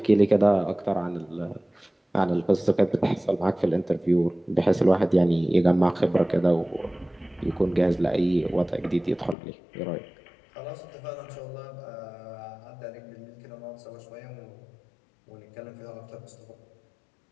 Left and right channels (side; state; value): right; drops out; at 9.3 s